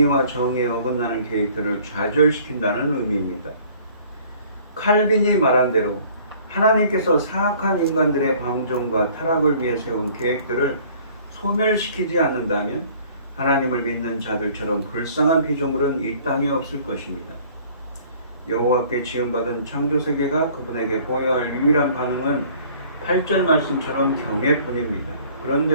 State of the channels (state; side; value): inverted; both; correlation -0.54